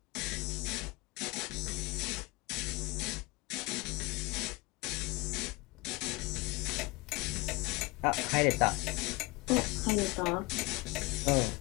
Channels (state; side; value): quieter; right; 23.6 dB